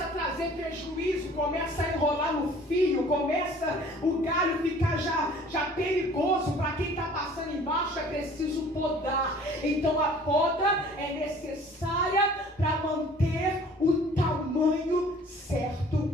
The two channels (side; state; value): both; normal; correlation 0.51